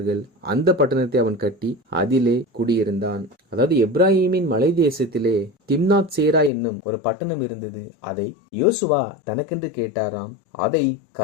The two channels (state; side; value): drops out; right; at 6.5 s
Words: அந்த பட்டணத்தை அவன் கட்டி அதிலே குடியிருந்தான். அதாவது எப்ராஹிமின் மலை தேசத்திலே திம்னாத் சேரா என்னும் ஒரு பட்டணம் இருந்தது. அதை யோசுவா தனக்கென்று கேட்டாராம். அதை